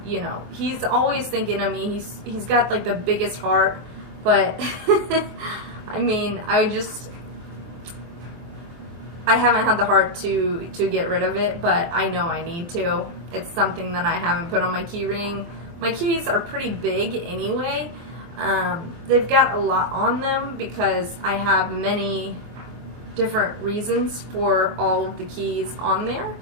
you know, he's always thinking of me. He's got like the biggest heart, but I mean, I haven't had the heart to get rid of it, but I know I need to. It's something that I haven't put on my key ring. My keys are pretty big anyway. They've got a lot on them because I have many different reasons for all of the keys on there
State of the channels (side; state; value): left; late; 24 ms